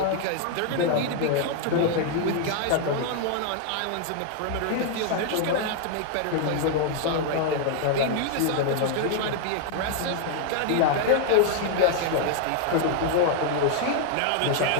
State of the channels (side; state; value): both; different; correlation 0.00